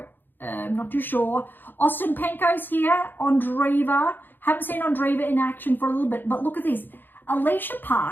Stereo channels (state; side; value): late; right; 0.093 ms